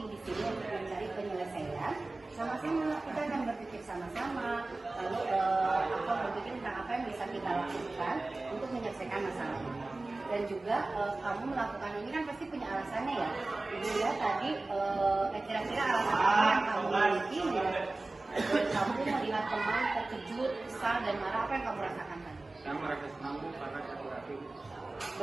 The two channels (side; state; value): left; quieter; 3.1 dB